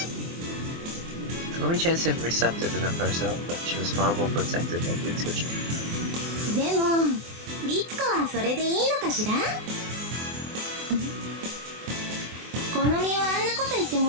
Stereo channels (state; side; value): late; left; 24 ms